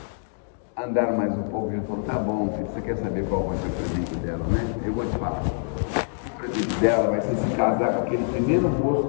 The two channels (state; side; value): silent; right; digital silence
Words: andaram mais um pouco. Ele falou, tá bom, filho, você quer saber qual vai ser o presente dela, né? Eu vou te falar. O presente dela vai ser se casar com aquele primeiro moço